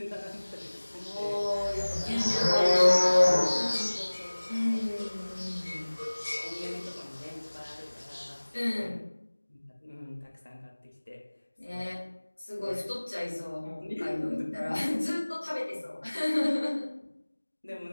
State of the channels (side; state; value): both; inverted; correlation -1.00